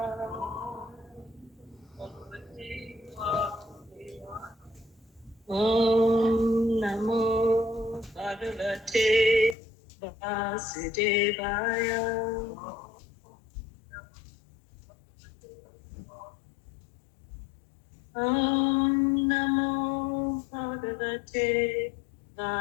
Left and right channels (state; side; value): drops out; right; at 9.6 s